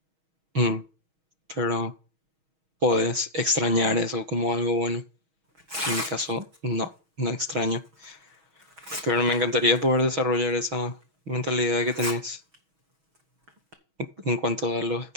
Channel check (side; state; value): left; late; 6.3 ms